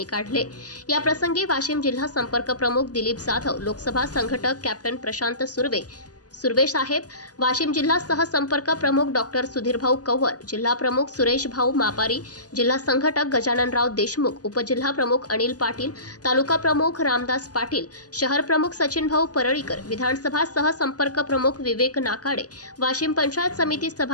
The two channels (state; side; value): late; right; 0.68 ms